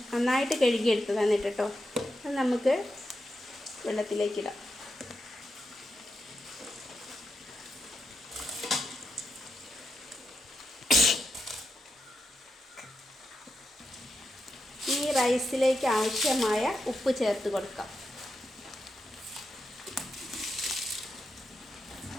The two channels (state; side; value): normal; both; correlation 0.86